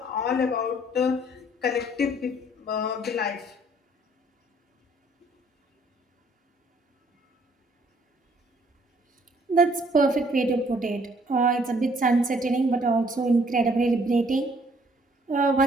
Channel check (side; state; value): both; normal; correlation 0.62